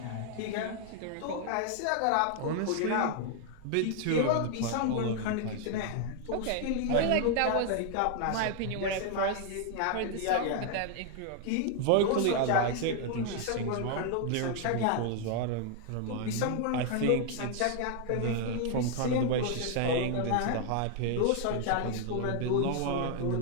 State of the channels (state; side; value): different; both; correlation 0.00